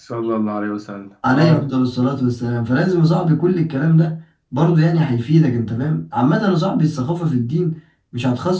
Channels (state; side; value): identical; both; correlation 1.00